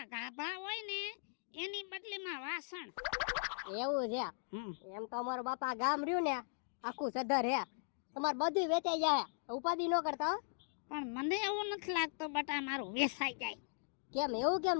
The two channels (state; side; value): silent; right; digital silence